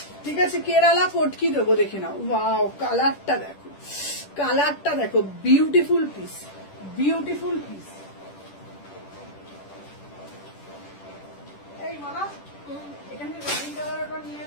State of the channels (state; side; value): late; right; 10 ms